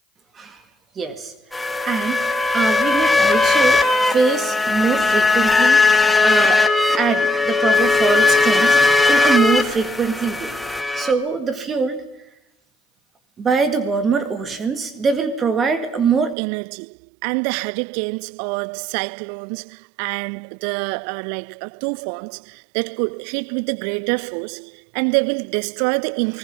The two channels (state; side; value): drops out; left; at 16.4 s